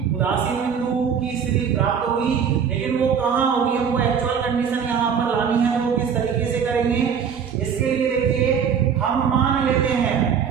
उदासीन बिंदु की स्थिति प्राप्त होगी, लेकिन वो कहाँ होगी, हमको एक्चुअल कंडीशन यहाँ पर लानी है। वो किस तरीके से करेंगे, इसके लिए देखिए हम मान लेते हैं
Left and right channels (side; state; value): left; quieter; 7.2 dB